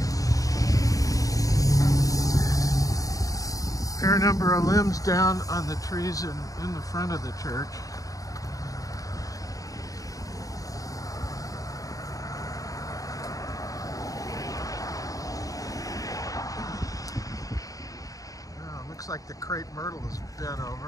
Fair number of limbs down on the trees in the front of the church. Looks like the crepe myrtle is bent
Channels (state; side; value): late; right; 0.17 ms